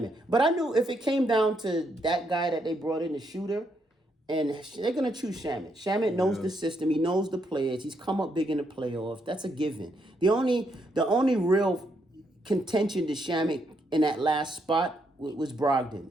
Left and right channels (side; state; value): both; normal; correlation 0.77